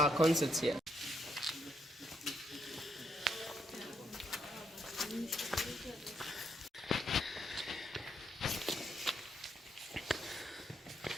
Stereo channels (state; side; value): normal; both; correlation 0.77